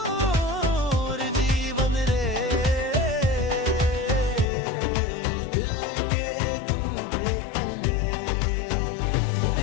जीवन रे दिल के तू बेकल्ले।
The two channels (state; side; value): drops out; right; at 4.5 s